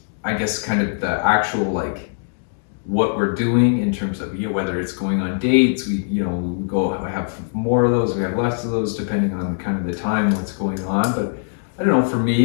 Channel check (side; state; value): right; silent; digital silence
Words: I guess kind of the actual, like, what we're doing in terms of, you know, whether it's going on dates, we, you know, we have more of those, we have less of those, depending on kind of the time, what's going on. But I don't know, for